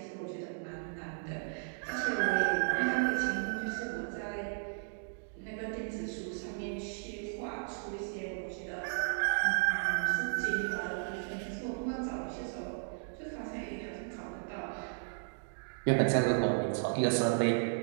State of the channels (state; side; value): silent; left; digital silence